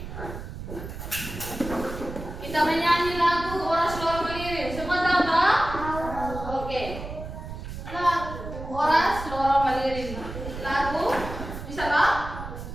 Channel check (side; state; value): right; noise; rumble, 9 dB below the sound